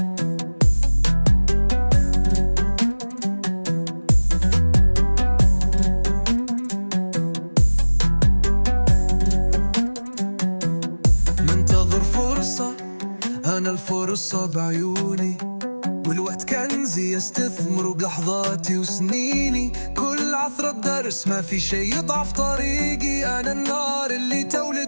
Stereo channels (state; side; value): inverted; both; correlation -1.00